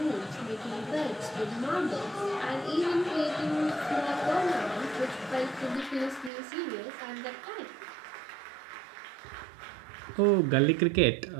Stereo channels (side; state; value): left; drops out; at 6.3 s